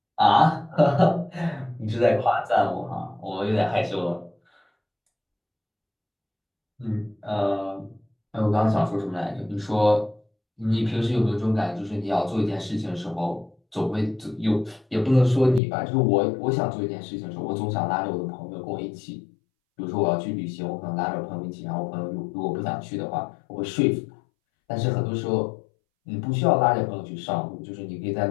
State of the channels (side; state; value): right; drops out; at 15.6 s